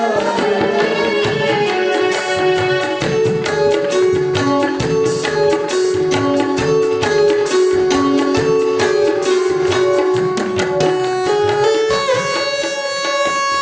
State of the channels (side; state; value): both; identical; correlation 1.00